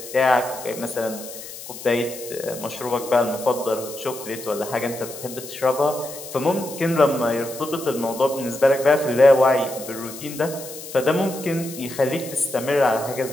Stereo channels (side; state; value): left; noise; hiss, 13 dB below the sound